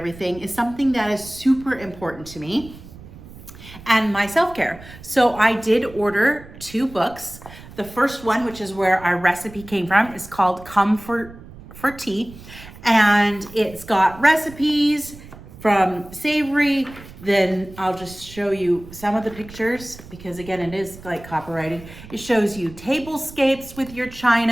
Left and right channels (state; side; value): noise; right; rumble, 18 dB below the sound